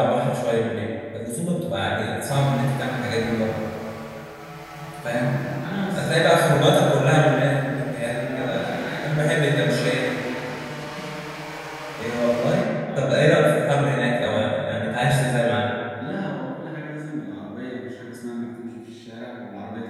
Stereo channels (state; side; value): identical; both; correlation 1.00